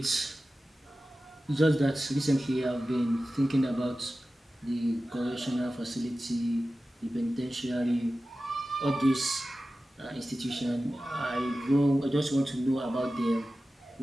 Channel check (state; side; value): normal; both; correlation 0.95